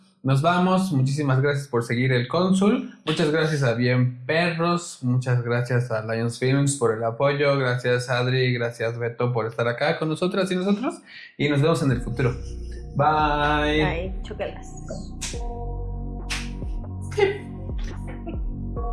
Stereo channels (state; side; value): identical; both; correlation 1.00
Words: Nos vamos, muchísimas gracias por seguir el Cónsul, muchas gracias a Bien Perros, muchas gracias a Lions Films por el apoyo, gracias Adri, gracias Beto por estar acá con nosotras y nosotros y nos vemos en el futuro. Bye. Ay, chócalas.